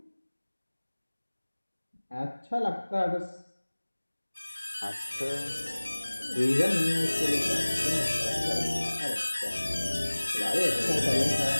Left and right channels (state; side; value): inverted; both; correlation -1.00